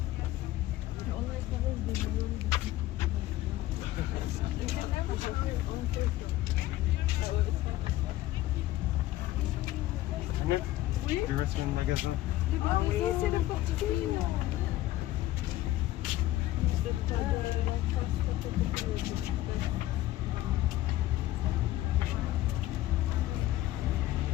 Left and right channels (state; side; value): quieter; right; 15.5 dB